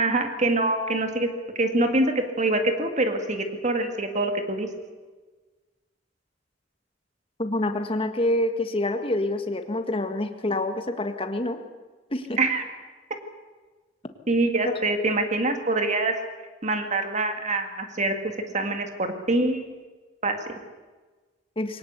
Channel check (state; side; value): normal; both; correlation 0.25